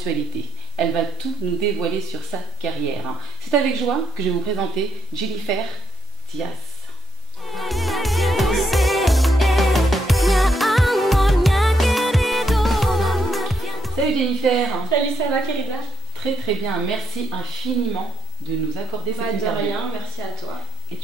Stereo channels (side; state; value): both; normal; correlation 0.75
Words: Elle va tout nous dévoiler sur sa carrière. C'est avec joie que je vais vous présenter Jennifer Diaz. Salut Jennifer. Salut, ça va Querida? Très très bien, merci infiniment de nous accorder cette interview. De rien, merci à toi. Et